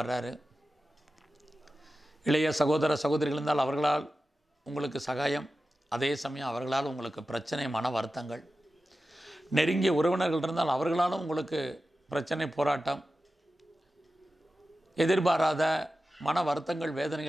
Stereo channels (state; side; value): normal; both; correlation 0.93